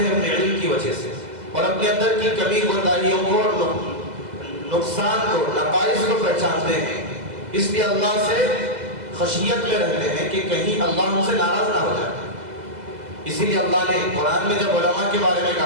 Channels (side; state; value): left; late; 2.0 ms